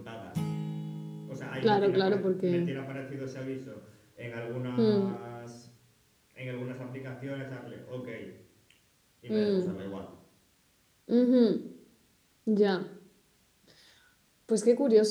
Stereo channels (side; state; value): both; identical; correlation 1.00